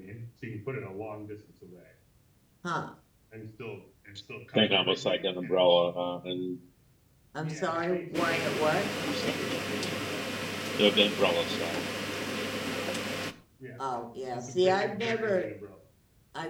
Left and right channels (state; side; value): identical; both; correlation 1.00